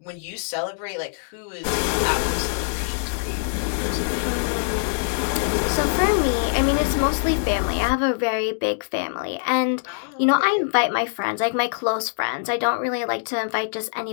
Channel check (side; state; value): right; silent; digital silence